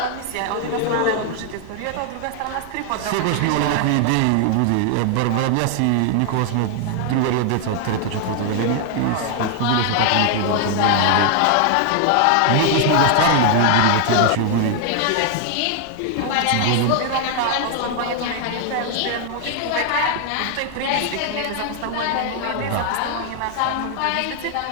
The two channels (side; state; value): both; different; correlation 0.00